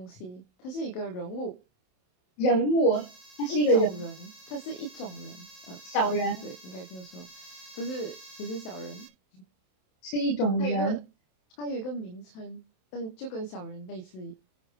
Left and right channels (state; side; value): late; right; 27 ms